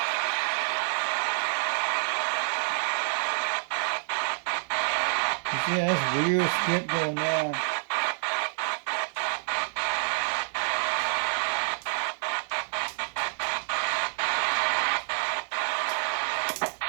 Yeah, that's weird skip going on.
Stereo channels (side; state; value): left; silent; digital silence